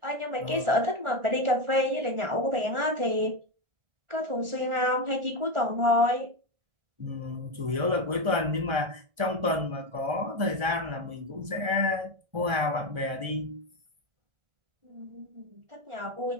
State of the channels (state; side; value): late; left; 1.4 ms